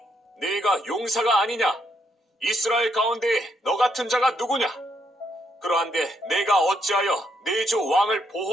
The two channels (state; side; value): normal; both; correlation 0.75